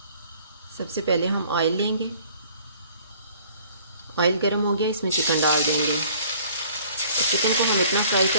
सबसे पहले हम ऑयल लेंगे। ऑयल गर्म हो गया, इसमें चिकन डाल देंगे। चिकन को हम इतना फ्राई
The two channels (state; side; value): inverted; both; correlation -0.54